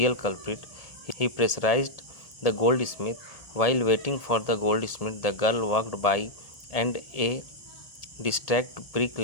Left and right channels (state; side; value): late; right; 1.8 ms